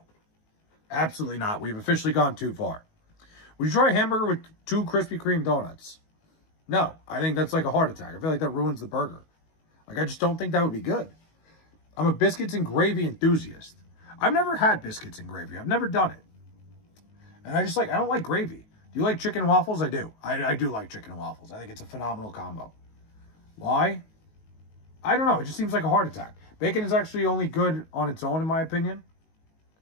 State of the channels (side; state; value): right; late; 19 ms